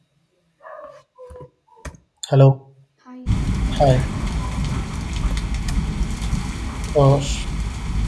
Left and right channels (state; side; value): identical; both; correlation 1.00